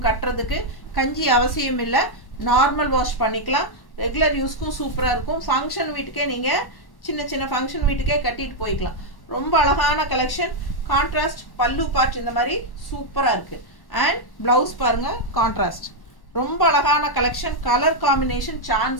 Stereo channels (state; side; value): late; right; 1.1 ms